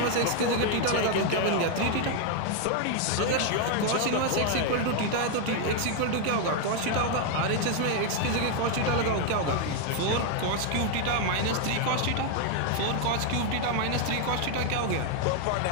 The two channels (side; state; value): both; different; correlation 0.01